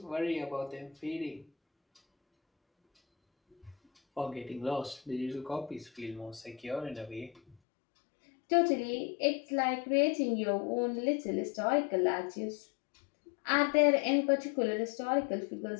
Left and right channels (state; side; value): drops out; right; at 7.6 s